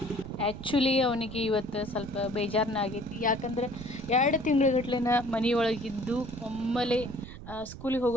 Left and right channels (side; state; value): right; noise; rumble, 13 dB below the sound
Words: ಆ್ಯಕ್ಚುಲಿ ಅವನಿಗೆ ಇವತ್ತು ಸ್ವಲ್ಪ ಬೇಜಾರನ್ನ ಆಗೈತಿ. ಯಾಕಂದರೆ 2 ತಿಂಗಳಗಟ್ಲೆನ ಮನೆಯೊಳಗಿದ್ದು ಒಮ್ಮೆಲೆ ಸ್ಕೂಲಿಗೆ